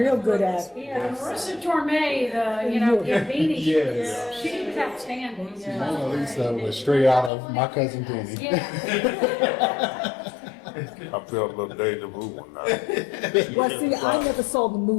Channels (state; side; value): drops out; right; at 7.3 s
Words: good at it. Yeah, the Marissa Torme, Gambini, Yes. she was outstanding. Mona Lisa was straight out of My Cousin Vinny. Yeah. I felt a little deja vu one night. Well, see, I never saw the